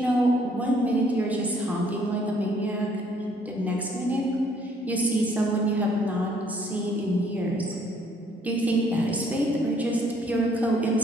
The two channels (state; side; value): normal; both; correlation 0.64